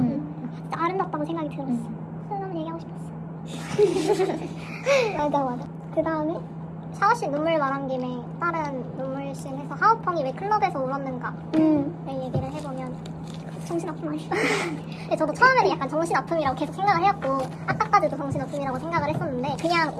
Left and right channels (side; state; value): both; identical; correlation 1.00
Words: 아름답다고 생각이 들었어. 그런 얘기하고 싶었어. 맞아. 그 다음에 샤워씬 눈물 말한 김에 다른 눈물씬 해서 하오펑이 왜 클럽에서 울었는가 얘기를 해보면 정신아픔 아니야? 근데 저도 처음에는 약간 정신아픔이라고 계속 생각을 해왔고 아까까지도 정신아픔이라고 생각을 했었는데 그냥